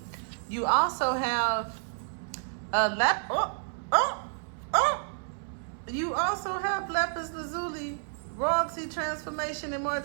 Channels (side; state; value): left; silent; 58 dB below the other